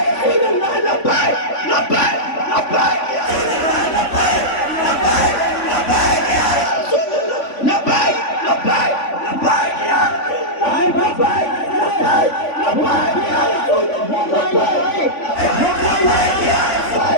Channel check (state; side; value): late; right; 3.5 ms